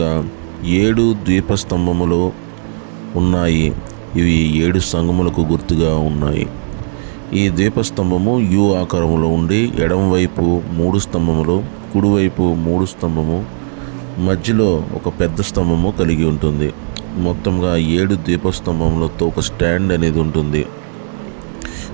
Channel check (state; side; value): silent; left; digital silence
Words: 7 ద్వీపస్తంభములు ఉన్నాయి. ఇవి 7 సంఘములకు గుర్తుగా ఉన్నాయి. ఈ ద్వీపస్తంభము యు ఆకారములో ఉండి ఎడమవైపు 3 స్తంభములు, కుడివైపు 3 స్తంభము, మధ్యలో ఒక పెద్ద స్తంభము కలిగి ఉంటుంది. మొత్తంగా 7 ద్వీపస్తంభములతో ఒక స్టాండ్ అనేది ఉంటుంది.